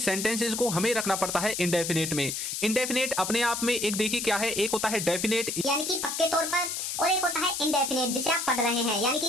को हमें रखना पड़ता है इंडेफिनेट में। इंडेफिनेट अपने आप में एक देखिए क्या है, एक होता है डेफिनेट यानी कि पक्के तौर पर, और एक होता है इनडेफिनेट जिसे आप पढ़ रहे हैं, यानी कि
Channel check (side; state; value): left; noise; hiss, 3 dB below the sound